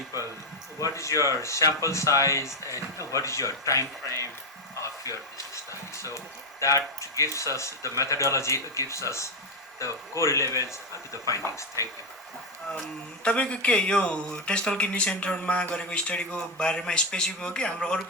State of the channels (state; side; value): normal; both; correlation 0.07